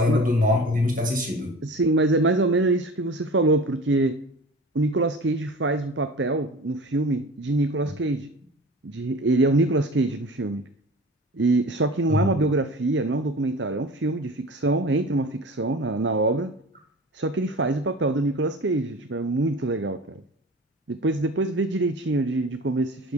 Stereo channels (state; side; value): normal; both; correlation 0.38